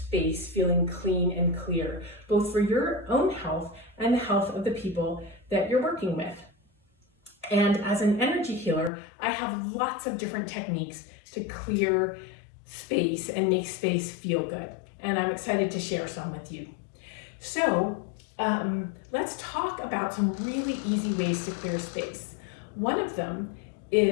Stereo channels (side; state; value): right; drops out; at 8.9 s